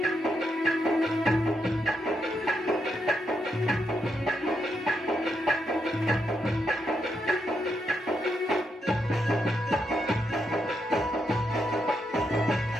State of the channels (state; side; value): normal; both; correlation 0.81